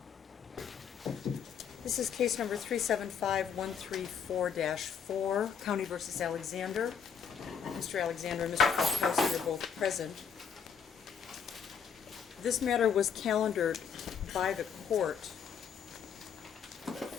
This is case number 375134-4, County v. Alexander. Mr. Alexander and Mr. Falkowski are both present. This matter was calendared by the court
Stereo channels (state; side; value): quieter; right; 7.0 dB